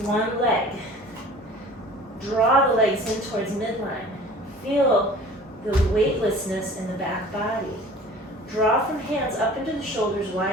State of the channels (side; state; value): both; normal; correlation 0.45